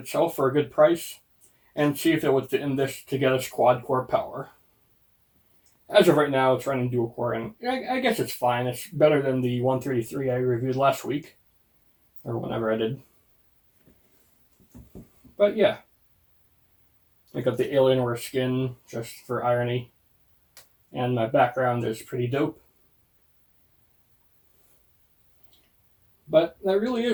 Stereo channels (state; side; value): identical; both; correlation 1.00